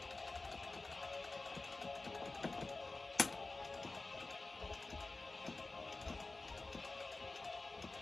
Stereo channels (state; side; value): quieter; right; 3.4 dB